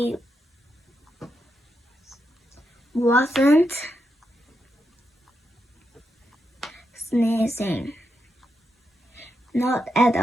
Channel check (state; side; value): normal; both; correlation 0.84